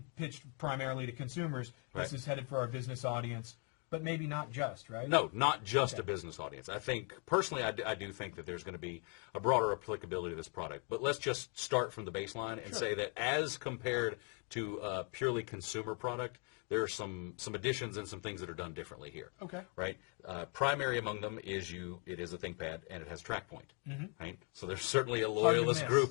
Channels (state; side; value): quieter; right; 38.4 dB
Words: pitched primarily to consumers, this is headed for our business audience. But maybe not just, right? No, not just a business audience. I think, personally, I do think that there's going to be a broader applicability to this product. But let's just start from the baseline and say that as compared to a purely consumer product, there are some additions and some things that are done differently here. Okay. Right? Primary among them is it is a ThinkPad, and it has TrackPoint. Right? So there's certainly a loyalist